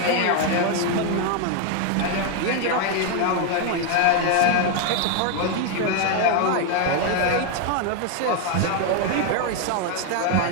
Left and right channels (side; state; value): both; different; correlation 0.01